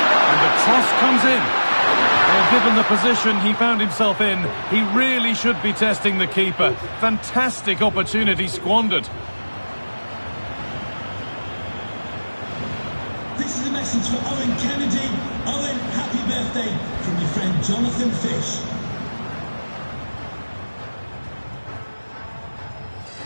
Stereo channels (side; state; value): both; inverted; correlation -1.00